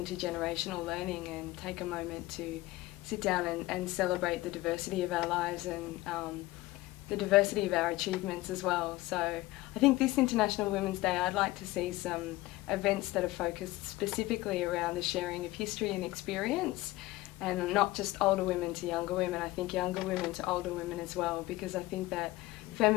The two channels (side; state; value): right; quieter; 18.6 dB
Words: learning and take a moment to sit down and celebrate the diversity of our lives and the diversity of our achievements as well. So I think this International Women's Day, I'd like to see some events that are focused specifically around the sharing of history and experience, and not just older women to younger women. I think younger women to older women as well, because I think that